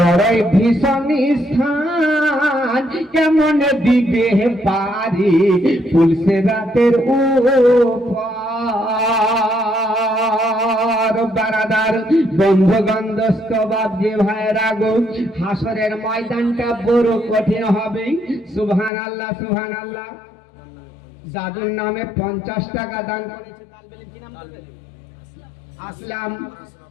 ভীষণ স্থান, কেমন দিবে পারি ফুলসেরাতের উপর। বারাদার বন্ধুগণ দোস্ত বাপজি ভাইরা গো, হাসরের ময়দানটা বড় কঠিন হবে। সুবহানাল্লাহ সুবহানাল্লাহ। জাদুর নামে 50 টাকা দান করেছে তালবে ইলম। কি নাম বলবেন? আসলাম।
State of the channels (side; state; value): right; drops out; at 18.9 s